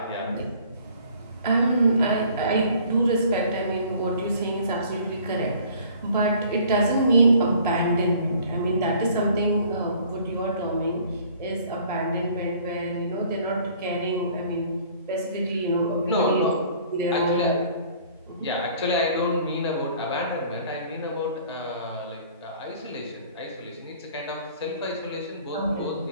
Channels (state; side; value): inverted; both; correlation -0.53